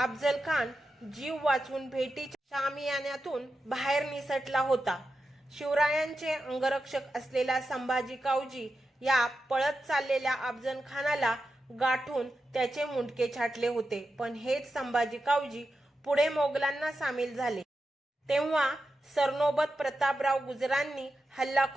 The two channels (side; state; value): both; normal; correlation 0.90